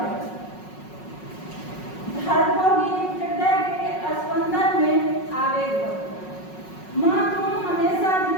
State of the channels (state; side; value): late; right; 5.4 ms